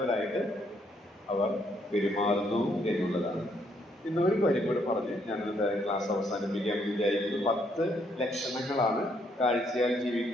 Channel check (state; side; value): normal; both; correlation 0.71